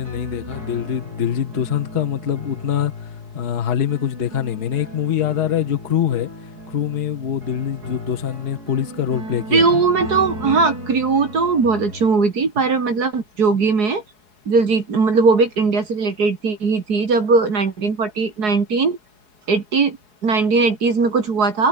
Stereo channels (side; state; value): left; late; 4.7 ms